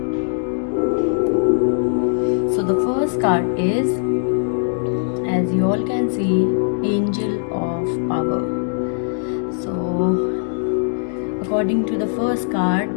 So the first card is, as you all can see, Angel of Power. So according to the first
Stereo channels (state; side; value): silent; right; digital silence